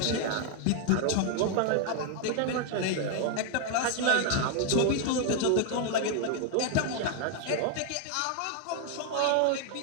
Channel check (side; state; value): both; different; correlation 0.00